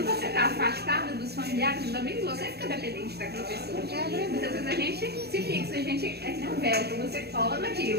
você está afastado dos familiares, também você fica dependente daquela pessoa. Muitas vezes a gente se fixa, a gente é que nem um véu, você cola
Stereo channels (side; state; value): left; late; 0.47 ms